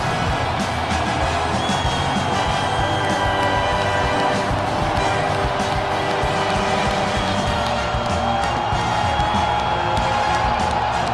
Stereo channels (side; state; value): both; identical; correlation 1.00